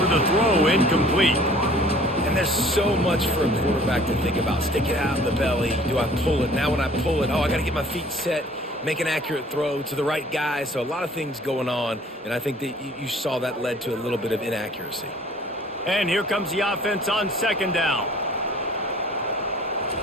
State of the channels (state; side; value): normal; both; correlation 0.52